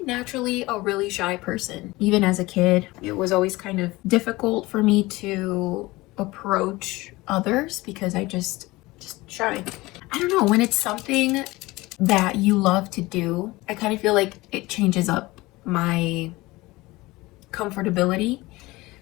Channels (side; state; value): right; quieter; 20.6 dB